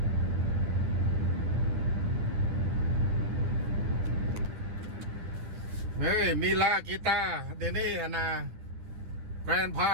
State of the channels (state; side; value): late; left; 10 ms